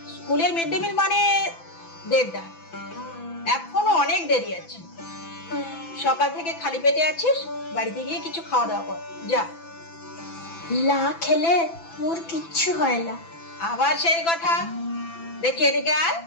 স্কুলের মিড ডে মিল মানে 1:30, এখনো অনেক দেরি আছে। সকাল থেকে খালি পেটে আছিস, বাড়িতে গিয়ে কিছু খাওয়া দাওয়া কর, যা। লা খেলে মোর কিচ্ছু হয় না। আবার সেই কথা? দেখি এদিকে আয়,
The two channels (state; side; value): late; right; 6.0 ms